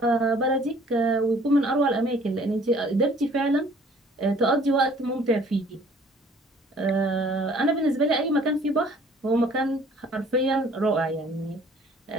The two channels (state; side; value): normal; both; correlation 0.55